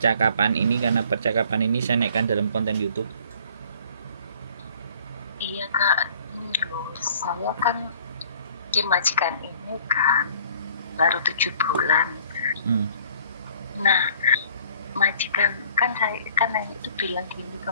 ini karena percakapan ini saya naikkan dalam konten YouTube. Iya Kak, ini loh, saya kan di majikan ini kan baru 7 bulan. Nah, majikan saya itu bilang gini ke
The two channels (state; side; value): inverted; both; correlation -0.55